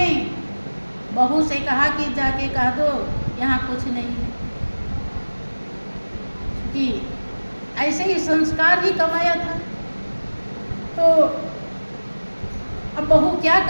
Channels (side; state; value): both; inverted; correlation -1.00